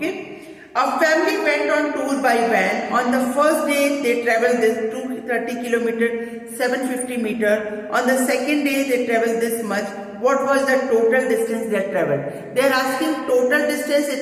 A family went on tour by van. On the first day they travelled this 230 kilometer, 750 meter. On the second day they travelled this much. What was the total distance they travelled? They are asking total distance,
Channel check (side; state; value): both; identical; correlation 1.00